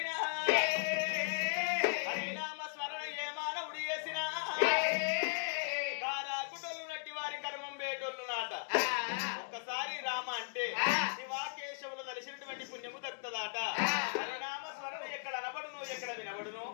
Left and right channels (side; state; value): right; silent; digital silence